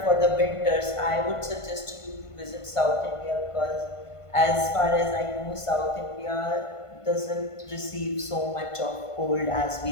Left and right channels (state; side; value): late; right; 1.5 ms